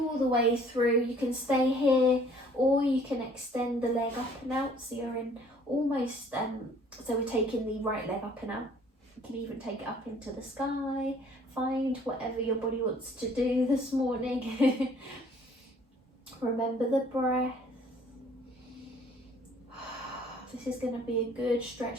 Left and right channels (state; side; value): normal; both; correlation 0.57